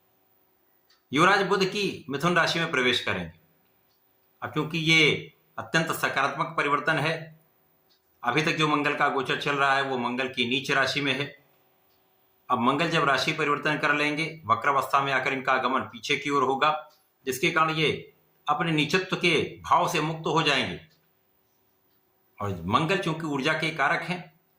युवराज बुध की मिथुन राशि में प्रवेश करेंगे। अब क्योंकि ये अत्यंत सकारात्मक परिवर्तन है, अभी तक जो मंगल का गोचर चल रहा है वो मंगल की नीच राशि में है। अब मंगल जब राशि परिवर्तन कर लेंगे, वक्रावस्था में आकर इनका आगमन पीछे की ओर होगा, जिसके कारण ये अपने नीचत्व के भाव से मुक्त हो जाएंगे। और मंगल चूंकि ऊर्जा के कारक हैं,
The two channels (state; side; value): identical; both; correlation 1.00